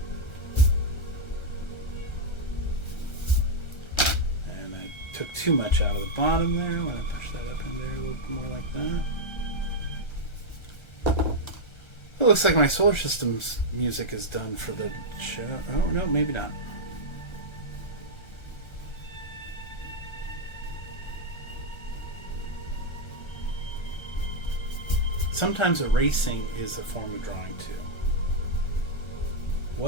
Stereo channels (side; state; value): right; late; 1.3 ms